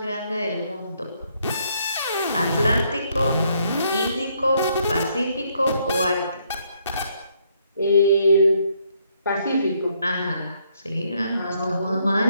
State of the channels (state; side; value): inverted; both; correlation -0.71